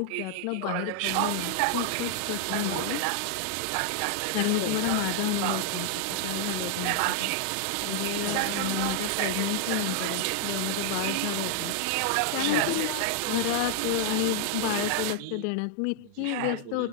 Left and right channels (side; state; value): both; different; correlation 0.00